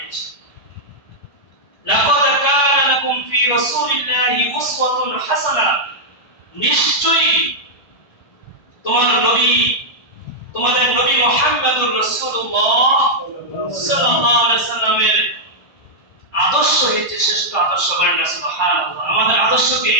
লাকাদ কানা লাকুম ফি রাসূলিল্লাহি উসওয়াতুন হাসানাহ, নিশ্চয়ই তোমাদের নবী মুহাম্মদুর রাসূলুল্লাহ সাল্লাল্লাহু আলাইহি সাল্লামের আদর্শ হচ্ছে শ্রেষ্ঠ আদর্শ। বলেন না সুবহানাল্লাহ। আমাদের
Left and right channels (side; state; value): right; late; 1.3 ms